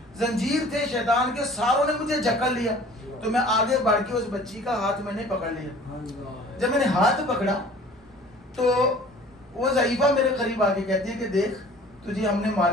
زنجیر تھے شیطان کے ساروں نے مجھے جکڑ لیا. تو میں آگے بڑھ کے اس بچی کا ہاتھ میں نے پکڑ لیا. جب میں نے ہاتھ پکڑا تو وہ ضعیفہ میرے قریب آ کے کہتی ہے کہ دیکھ تجھے ہم نے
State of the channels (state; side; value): normal; both; correlation 0.48